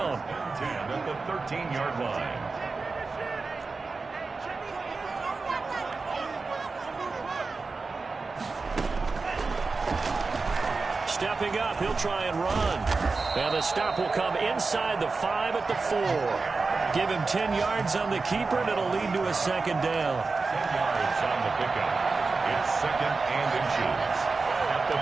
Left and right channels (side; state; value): left; quieter; 4.1 dB